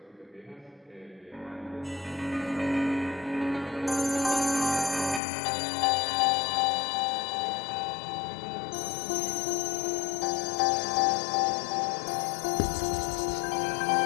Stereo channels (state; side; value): drops out; right; at 5.2 s